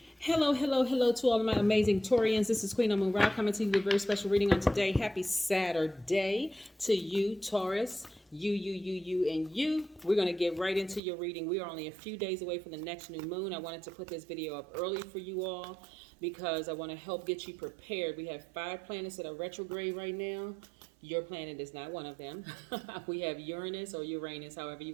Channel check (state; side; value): drops out; left; at 11.0 s